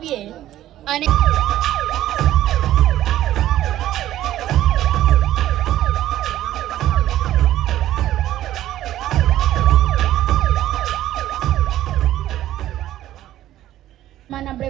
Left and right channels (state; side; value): quieter; left; 13.4 dB